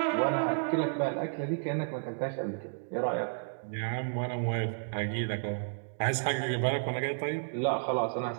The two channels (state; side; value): silent; left; digital silence